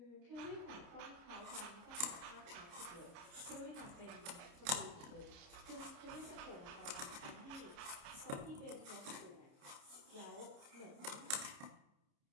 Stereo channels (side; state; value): left; late; 29 ms